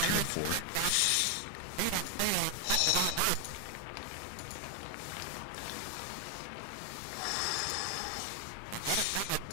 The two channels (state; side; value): different; both; correlation 0.01